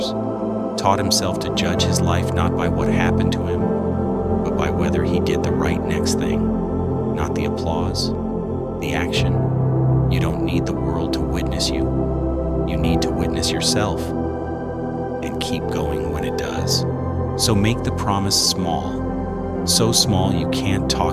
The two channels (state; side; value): identical; both; correlation 1.00